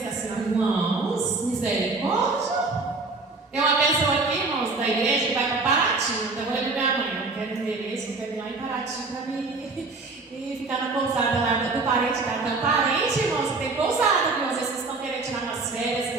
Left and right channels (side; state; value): left; quieter; 3.7 dB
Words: assim, irmãos, misericórdia. Tem uma pessoa aqui, irmãos, da igreja que vai para Paraty. Então eu falei para minha mãe: eu quero endereço, eu quero ir lá em Paraty para mim e ficar na pousada lá do parente da. Então, parente, irmãos, tem pousada, viu? Às vezes vocês estão querendo tirar umas férias